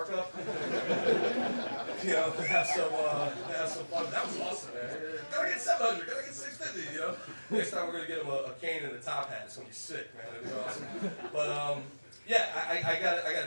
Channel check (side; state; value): both; inverted; correlation -1.00